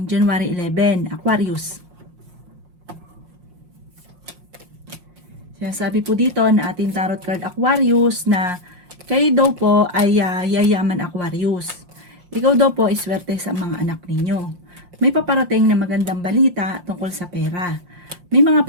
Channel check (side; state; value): left; late; 5.6 ms